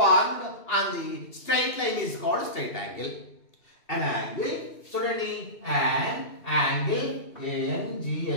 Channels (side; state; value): right; late; 2.7 ms